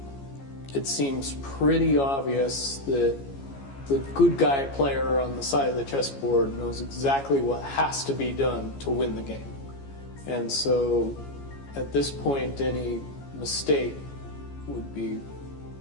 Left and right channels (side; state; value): right; late; 14 ms